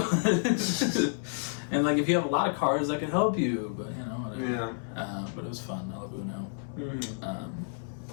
And like, if you have a lot of cards, that could help you. But whatever. Yeah. But it was fun. I love Uno.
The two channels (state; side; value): silent; right; 58 dB below the other